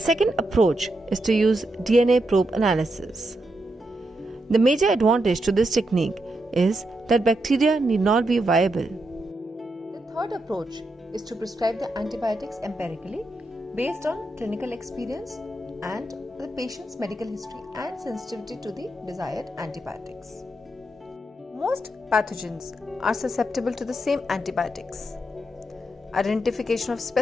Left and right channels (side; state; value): both; normal; correlation 0.83